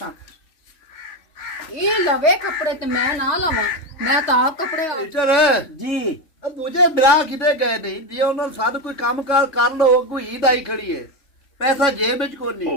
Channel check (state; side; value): late; right; 3.6 ms